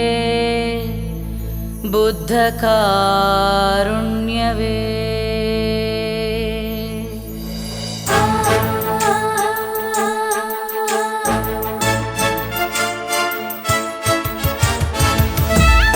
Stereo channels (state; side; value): identical; both; correlation 1.00